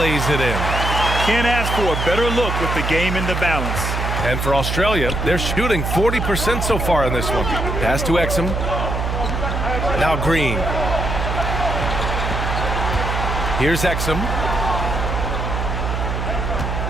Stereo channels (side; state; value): right; noise; hum, 1 dB below the sound